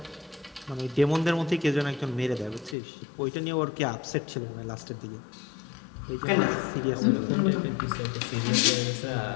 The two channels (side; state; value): right; drops out; at 2.8 s